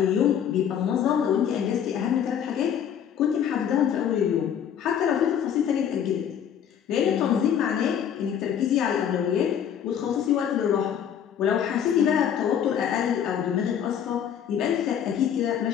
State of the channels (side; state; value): right; quieter; 8.9 dB